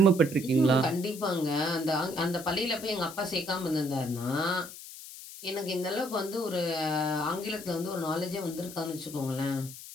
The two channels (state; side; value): noise; left; hiss, 14 dB below the sound